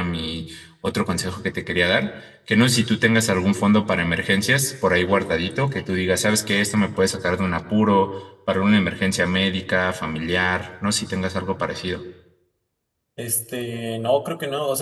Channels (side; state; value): both; identical; correlation 1.00